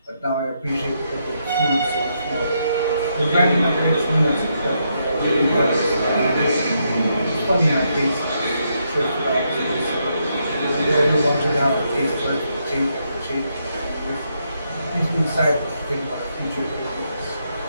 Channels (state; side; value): inverted; both; correlation -0.79